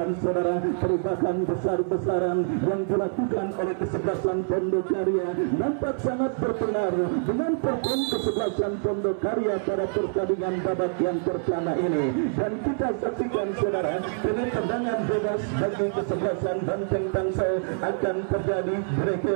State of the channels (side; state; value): left; silent; 61 dB below the other